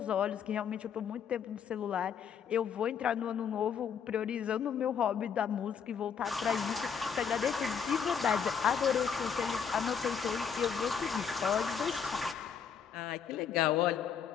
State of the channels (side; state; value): right; quieter; 7.2 dB